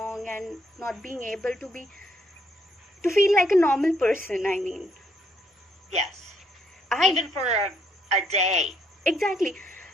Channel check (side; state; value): both; normal; correlation 0.71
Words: and not being able to feel like a normal person. I mean, yes, even for a day. Exactly.